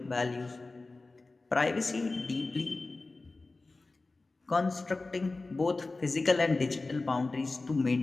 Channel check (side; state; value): right; quieter; 3.4 dB